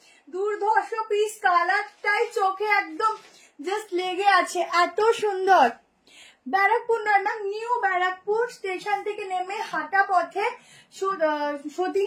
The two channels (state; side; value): identical; both; correlation 1.00